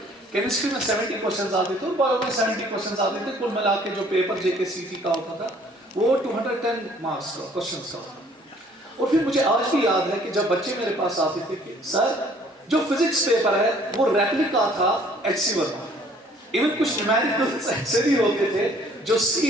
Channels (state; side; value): normal; both; correlation 0.58